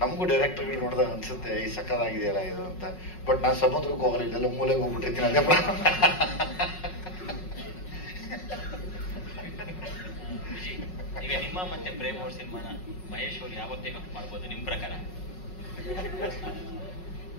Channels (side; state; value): right; late; 5.4 ms